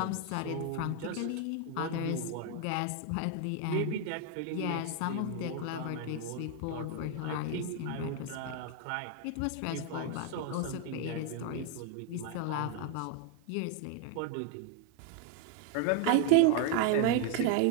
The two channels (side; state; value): both; different; correlation 0.01